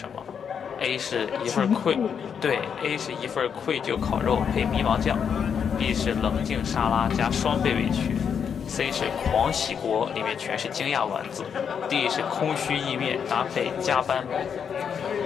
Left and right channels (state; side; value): quieter; right; 7.2 dB